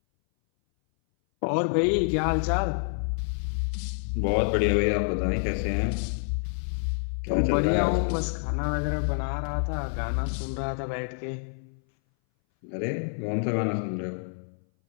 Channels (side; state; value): right; silent; 59 dB below the other